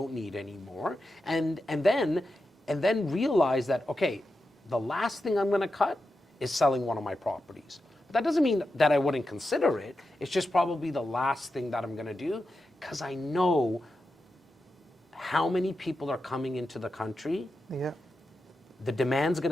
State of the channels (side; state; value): both; normal; correlation 0.89